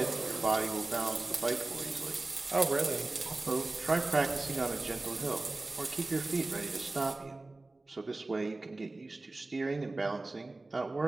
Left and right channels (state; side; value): quieter; left; 3.1 dB